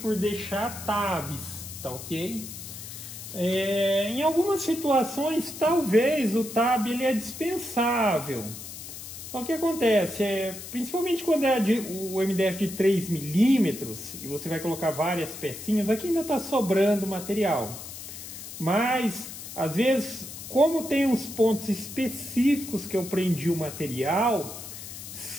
deixar tabs, tá ok? Em algumas situações talvez o tab ele é dispensável. O que acontece principalmente quando é o MDF de 3 milímetros e você vai colocar várias pecinhas, aqui ainda está sobrando material. Mas, às vezes, como tem uns pontos específicos que eu prendi o material,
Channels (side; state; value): left; noise; hiss, 11 dB below the sound